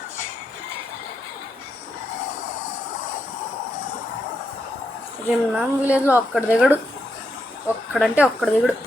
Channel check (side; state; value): both; normal; correlation 0.82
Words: రిమ్నామ్ విలేజ్లో ఒక్కడు దిగడు, ఒక్కడంటే ఒక్కడు దిగుడు.